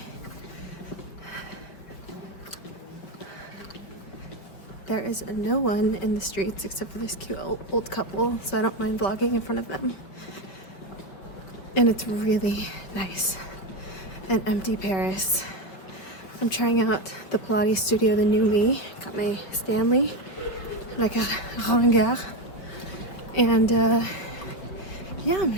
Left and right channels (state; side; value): late; right; 5.0 ms